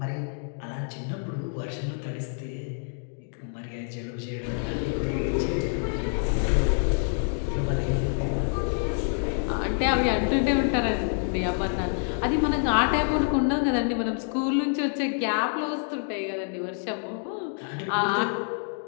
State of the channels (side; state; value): right; silent; 60 dB below the other